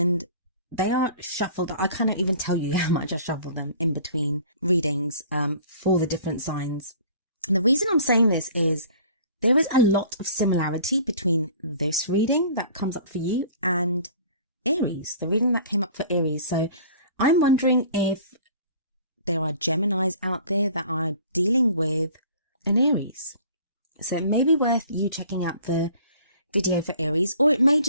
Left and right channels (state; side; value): inverted; both; correlation -0.49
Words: they are shuffled. I can't even tell you how much I shuffle them in between readings, for the different signs. And the reason I'm saying this is there is a lot of similarity between this reading that comes up for you and Aries, the reading that came up for Aries. So I'm wondering if there are Geminis out there that are dealing with an Aries. So it may be worth you checking out the video for Aries, or it may